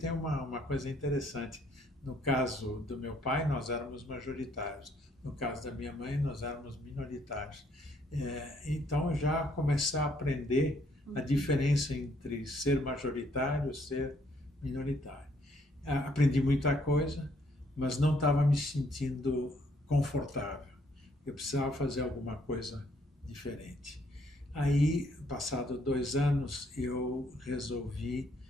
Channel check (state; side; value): normal; both; correlation 0.68